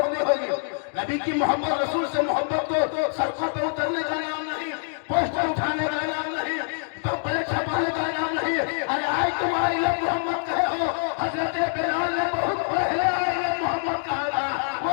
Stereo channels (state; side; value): silent; right; 62 dB below the other